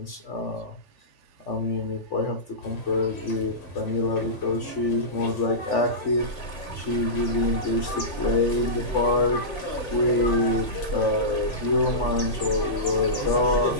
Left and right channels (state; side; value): late; right; 3.5 ms